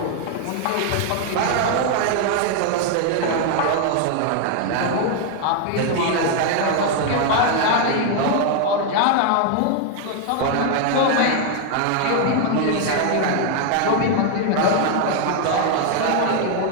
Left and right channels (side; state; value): both; different; correlation 0.00